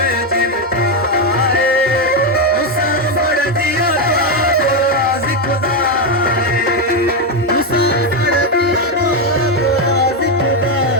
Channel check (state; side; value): normal; both; correlation 0.05